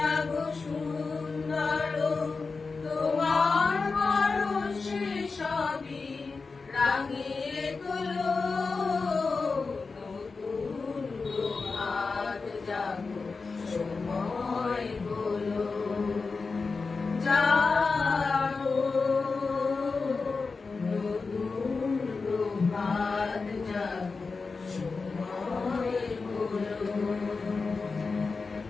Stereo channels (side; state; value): right; quieter; 4.4 dB